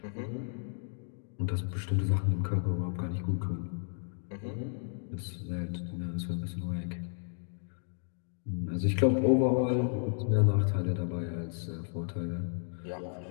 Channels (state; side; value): silent; right; 56 dB below the other